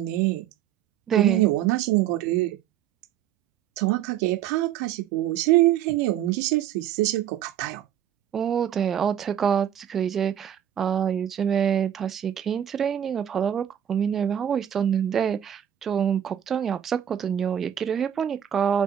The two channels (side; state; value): left; quieter; 10.3 dB